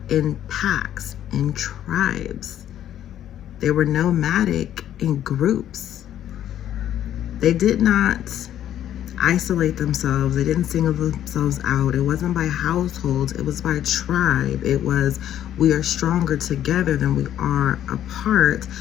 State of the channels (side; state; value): right; quieter; 11.2 dB